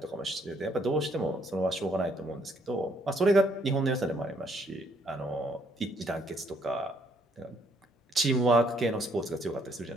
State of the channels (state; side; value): normal; both; correlation 0.68